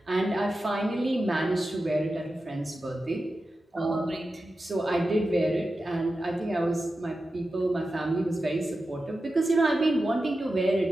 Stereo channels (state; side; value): normal; both; correlation 0.92